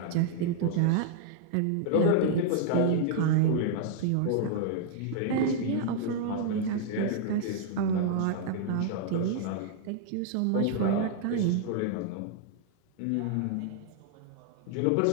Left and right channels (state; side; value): different; both; correlation -0.01